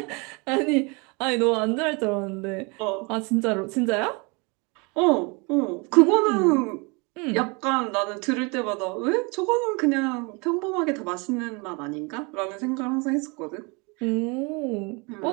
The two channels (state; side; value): quieter; left; 29.7 dB